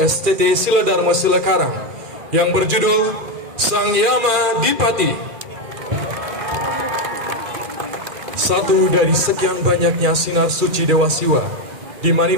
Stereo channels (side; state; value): left; late; 2.4 ms